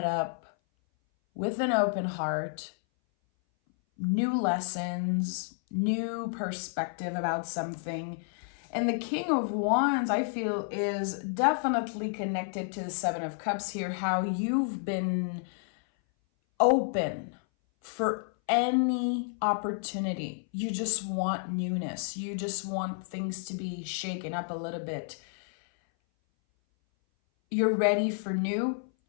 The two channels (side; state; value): right; silent; 58 dB below the other